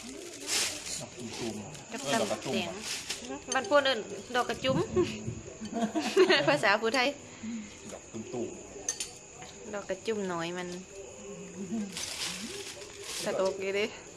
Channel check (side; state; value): both; identical; correlation 1.00